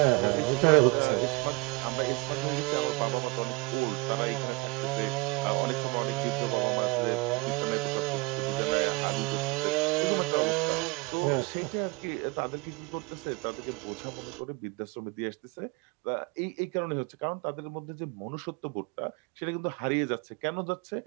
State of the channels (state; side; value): quieter; left; 26.3 dB